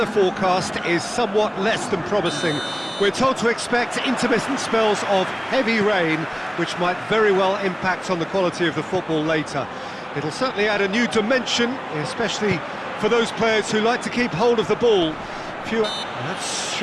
forecast is somewhat less than promising. We're told to expect intermittent spells of heavy rain, which might very well impact on the quality of the football later. It'll certainly add a new dimension, especially for those players who like to keep hold of the ball. That's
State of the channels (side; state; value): both; identical; correlation 1.00